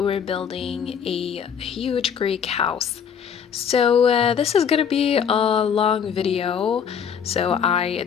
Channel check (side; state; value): right; quieter; 7.5 dB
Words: building a huge Greek house. So this is gonna be a long video, so I